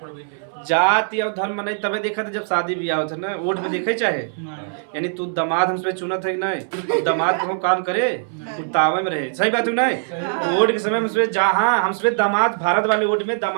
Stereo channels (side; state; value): left; silent; 63 dB below the other